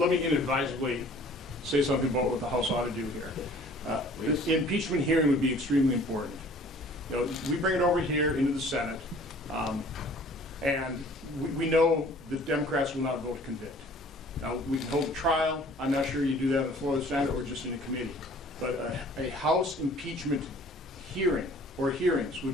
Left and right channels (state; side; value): normal; both; correlation 0.51